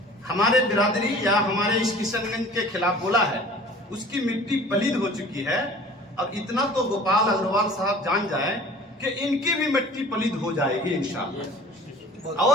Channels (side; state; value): both; normal; correlation 0.46